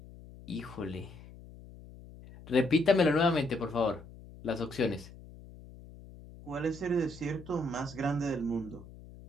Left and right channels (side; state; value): left; noise; hum, 18 dB below the sound